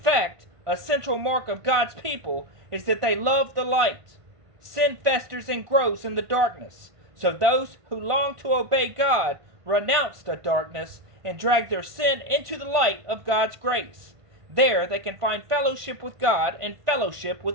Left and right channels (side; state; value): left; late; 1.5 ms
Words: a central mark of God's people is that they love the light. Sin festers and grows in the darkness, so those who long to obey God renounce the darkness and drag their sin into the light of God's grace. There they can find fellowship with God and fellowship